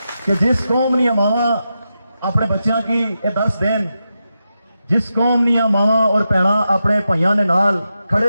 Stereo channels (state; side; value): inverted; both; correlation -0.88